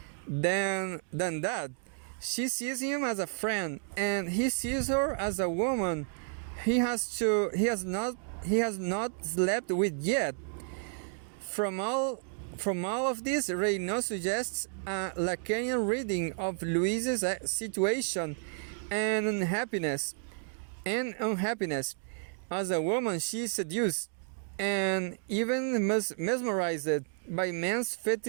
than that. She sees him as a friend, and he sees her as a woman he has not slept with yet. From all of this, Reynaud suggests a Lacanian reading of Louise's situation and unhappiness. As a woman, she is seduced and even mesmerized by men's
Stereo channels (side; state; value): left; silent; 56 dB below the other